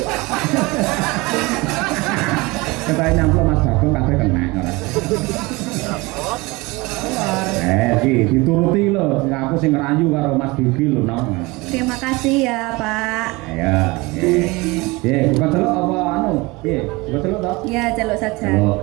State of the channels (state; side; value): quieter; left; 23.6 dB